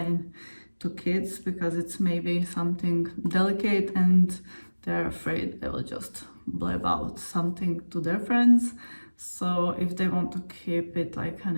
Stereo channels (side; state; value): both; inverted; correlation -1.00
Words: to kids because it's maybe something delicate and they're afraid they will just blab out something to their friends. So if they want to keep it like an